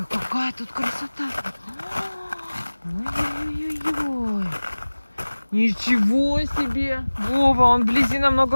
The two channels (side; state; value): both; inverted; correlation -1.00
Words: какая тут красота. Ой-ой-ой-ой. Ничего себе. Вова, он вблизи